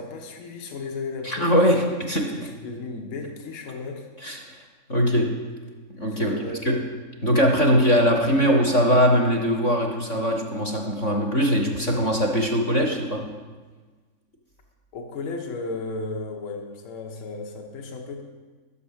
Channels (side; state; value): right; late; 3.6 ms